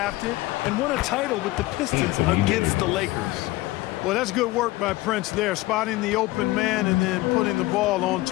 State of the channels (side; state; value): right; quieter; 19.0 dB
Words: and won a title with the Pistons against the Lakers. Well, that's good work by Prince there, spotting the open man and then putting the ball on